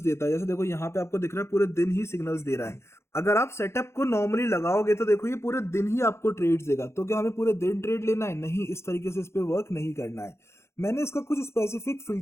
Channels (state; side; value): late; right; 0.13 ms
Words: है। जैसे देखो, यहाँ पे आपको दिख रहा है पूरे दिन ही सिग्नल्स दे रहा है। अगर आप सेटअप को नॉर्मली लगाओगे तो देखो, ये पूरे दिन ही आपको ट्रेड्स देगा। तो क्या हमें पूरे दिन ट्रेड लेना है? नहीं, इस तरीके से इस पे वर्क नहीं करना है। मैंने इसका कुछ स्पेसिफिक